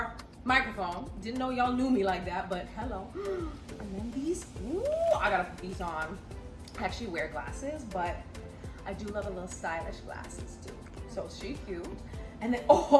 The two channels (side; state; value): both; identical; correlation 1.00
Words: microphone. Didn't know y'all knew me like that, but hello. And then these. Ooh, I gotta put these on. I actually wear glasses, but I do love a little stylish glasses too. So she cute. And then,